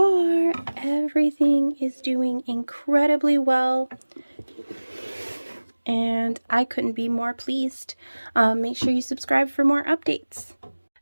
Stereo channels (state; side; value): inverted; both; correlation -1.00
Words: everything is doing incredibly well. And I couldn't be more pleased. Make sure you subscribe for more updates.